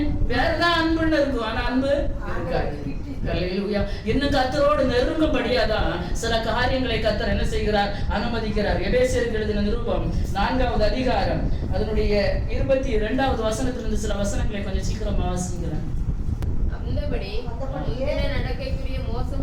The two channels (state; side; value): identical; both; correlation 1.00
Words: வேறதான் அன்புன்னு இருக்கும், ஆனா அன்பு இருக்காது. ஹல்லேலூயா. இன்னும் கர்த்தரோடு நெருங்கும்படியாதான் சில காரியங்களை கர்த்தர் என்ன செய்கிறார்? அனுமதிக்கிறார். எபேசியருக்கு எழுதின நிருபம் 4வது அதிகாரம் அதனுடைய 22வது வசனத்திலிருந்து சில வசனங்களை கொஞ்சம் சீக்கிரமா வாசிக்கிறேன். அந்தபடி நடக்கைக்குரிய